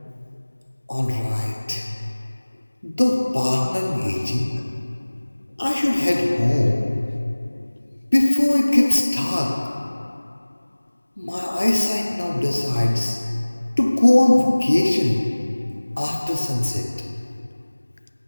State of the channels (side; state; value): both; inverted; correlation -1.00